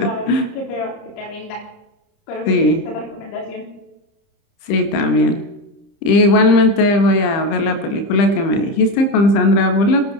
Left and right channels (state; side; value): late; right; 30 ms